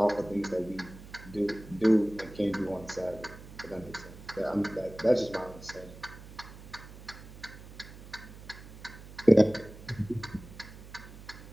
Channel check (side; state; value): right; noise; hum, 16 dB below the sound